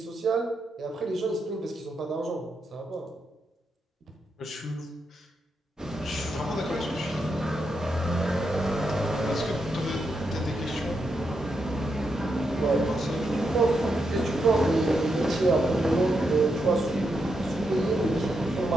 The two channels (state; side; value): normal; both; correlation 0.83